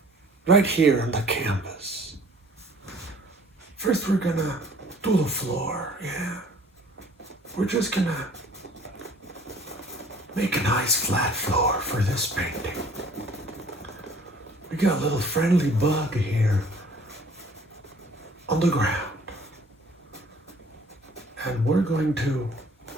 right here on the canvas. First, we're gonna do the floor, yeah. We're just gonna make a nice flat floor for this painting. We got a little friendly bug here on the ground. And we're going to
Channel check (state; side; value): normal; both; correlation 0.53